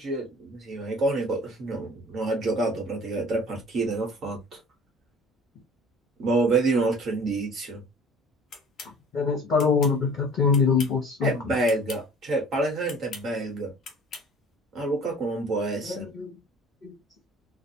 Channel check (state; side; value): normal; both; correlation 0.47